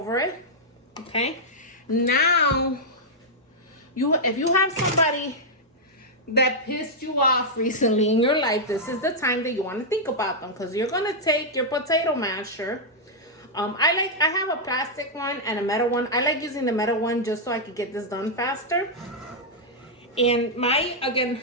it. Okay. Now, if you have somebody that pissed you off recently in your life, this is the time that you want to think about them, because you're going to take your potato masher. I have a plastic one and a metal one. I like using the metal one just so I could get this done faster. And again,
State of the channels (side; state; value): both; normal; correlation -0.05